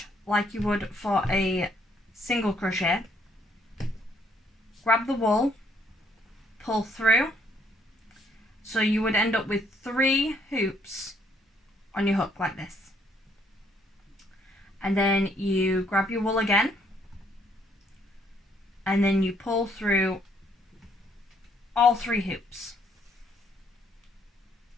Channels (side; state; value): both; normal; correlation 0.68